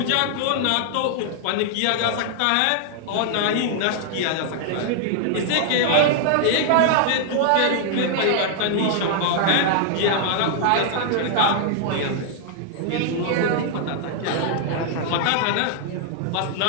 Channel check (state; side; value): different; both; correlation 0.00